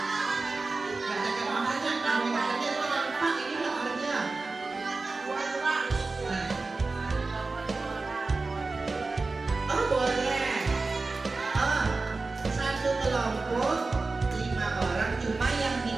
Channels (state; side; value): quieter; left; 3.7 dB